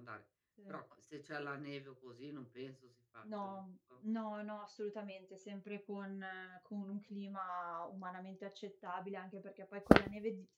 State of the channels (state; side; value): identical; both; correlation 1.00